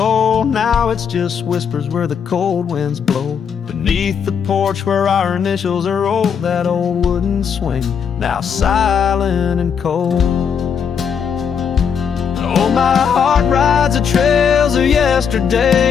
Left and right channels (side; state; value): right; quieter; 7.1 dB